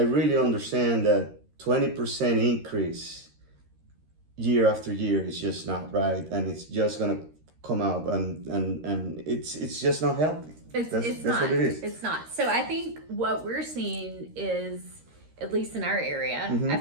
understand that 20% increase year after year is just not right, and it's just gonna come out, and it's just not healthy. That's not. What it is. It's not. So I think what we're seeing is, at least in our area, I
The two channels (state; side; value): late; left; 13 ms